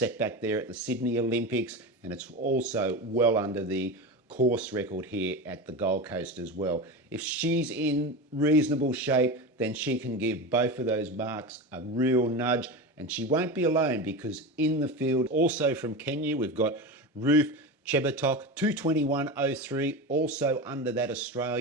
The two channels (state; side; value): normal; both; correlation 0.24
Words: back there at the Sydney Olympics, and it's also well under the course record here at the Gold Coast as well. If she's in reasonable shape, then she can give both of those marks a real nudge, and she won't be alone, because in the field, also from Kenya, we've got Ruth Chebatok, 2:21.03, also under that